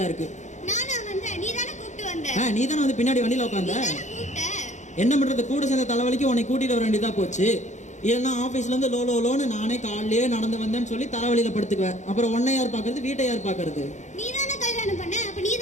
இருக்கு. நானா வந்தேன், நீ தானே கூப்பிட்டு வந்த. நீ தானே வந்து பின்னாடி வண்டியில உட்காந்த. நீ தானே கூப்பிட்ட. என்ன பண்றது, கூட சேர்ந்த தலைவலிக்கு உன்னை கூட்டிட்டு வர வேண்டியதா போச்சு. இல்லைன்னா ஆஃபீஸ்ல இருந்து லோன்னு நானே காலையிலேயே நடந்து வந்தேன்னு சொல்லி தலைவலியில படுத்துக்குவேன். அப்புறம் உன்னை யார் பாக்குறது, வீட்டை யார் பாக்குறது? நீ தானே கல்யாணம் பண்ண, அப்ப நீ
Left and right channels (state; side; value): late; right; 0.34 ms